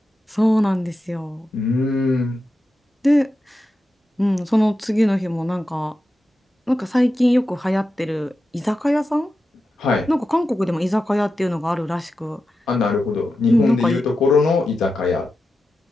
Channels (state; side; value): normal; both; correlation 0.90